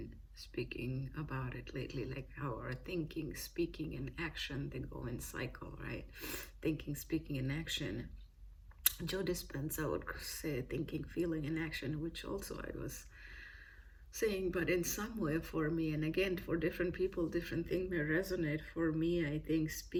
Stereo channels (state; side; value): identical; both; correlation 1.00